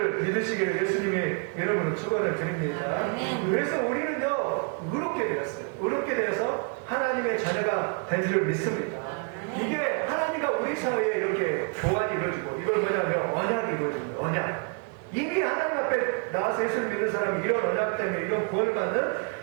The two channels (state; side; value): quieter; left; 38.7 dB